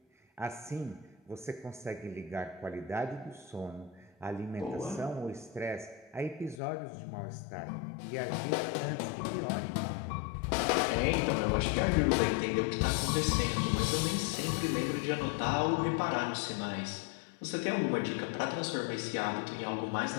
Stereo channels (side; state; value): right; drops out; at 6.6 s